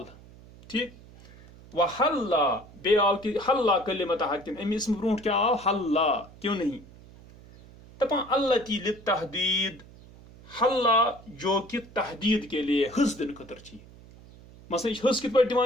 ٹھیک و حلا بی آو تی حلا کلمۃ حق ام اسم برونٹ کیا آو حلا کیوں نہیں دپان التی للتحدید حلا جو کہ تحدید کے لیے حس دن خطر چاہیے مثلا حس کت پہ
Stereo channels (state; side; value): noise; right; hum, 21 dB below the sound